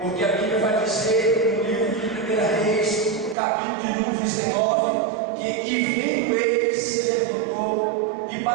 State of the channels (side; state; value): left; drops out; at 3.4 s